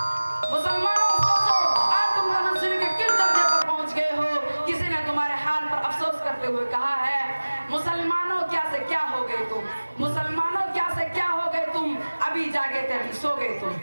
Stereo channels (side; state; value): both; inverted; correlation -1.00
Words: مسلمانوں سوچو آج تم تنزلی کے کس درجے پر پہنچ گئے ہو۔ کسی نے تمہارے حال پر افسوس کرتے ہوئے کہا ہے مسلمانوں کیا سے کیا ہو گئے تم، مسلمانوں کیا سے کیا ہو گئے تم، ابھی جاگے تھے ابھی سو گئے تم۔